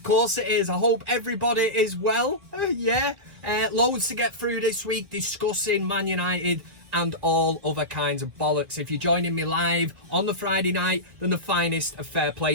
course it is. I hope everybody is well. Loads to get through this week discussing ManUtd and all other kinds of bollocks. If you're joining me live on the Friday night, then the finest of fair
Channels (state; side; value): late; left; 1.8 ms